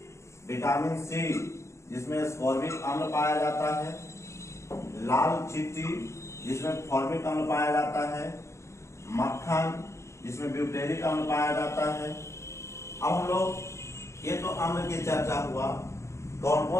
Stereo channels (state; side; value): late; right; 0.14 ms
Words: विटामिन सी जिसमें स्कॉर्बिक अम्ल पाया जाता है, लाल चिट्टी जिसमें फॉर्मिक अम्ल पाया जाता है, मक्खन जिसमें ब्यूटेरिक अम्ल पाया जाता है। अब हम लोग ये तो अम्ल की चर्चा हुआ, कौन